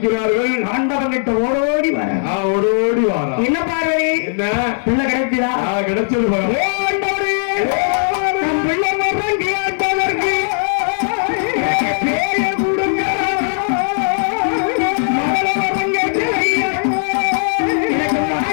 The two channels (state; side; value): silent; right; digital silence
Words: ஆண்டவன் கிட்ட ஓடோடி வர என்ன பார்வதி, என்ன பிள்ளை கிடைச்சதா? கிடைச்சது. பிள்ளை கேட்பதற்கு பேரை கொடுங்க. எனக்கு